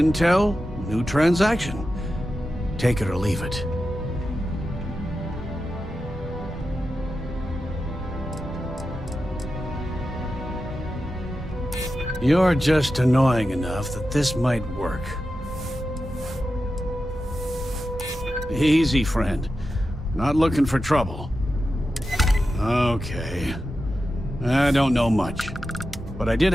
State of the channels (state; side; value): normal; both; correlation 0.91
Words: new transaction. Take it or leave it. You're just annoying enough that this might work. Easy, friend. Not looking for trouble. Okay. I don't know much. But I did